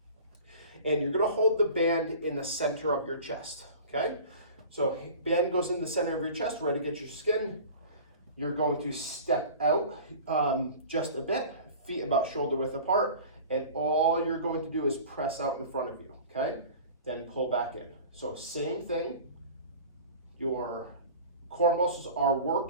And you're gonna hold the band in the center of your chest, okay? So band goes in the center of your chest, ready to get your skin. You're going to step out just a bit, feet about shoulder width apart, and all you're going to do is press out in front of you, okay? Then pull back in. So same thing, your core muscles are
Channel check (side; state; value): both; inverted; correlation -0.40